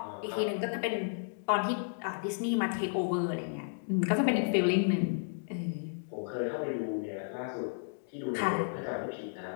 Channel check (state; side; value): silent; right; digital silence